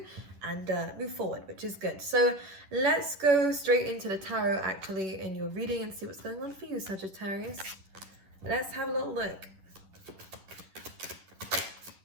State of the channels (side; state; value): left; late; 10 ms